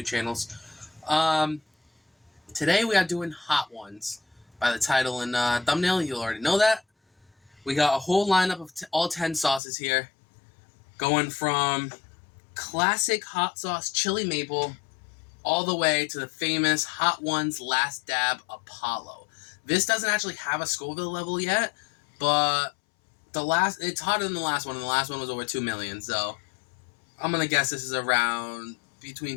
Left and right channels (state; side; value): drops out; right; at 9.6 s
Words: channels. Today we are doing Hot Ones. By the title and thumbnail, you'll already know that. We got a whole lineup of all 10 sauces here, going from classic hot sauce chili maple all the way to the famous Hot Ones Last Dab Apollo. This doesn't actually have a Scoville level yet, but it's hotter than the last one, and the last one was over 2 million, so I'm gonna guess this is around